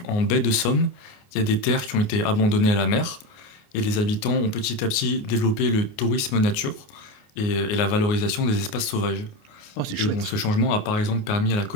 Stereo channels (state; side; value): late; right; 28 ms